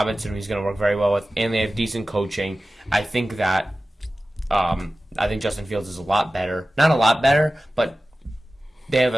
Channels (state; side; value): normal; both; correlation 0.95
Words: who he's going to work very well with, and they have decent coaching. I think that Justin Fields is a lot better. Not a lot better, but they have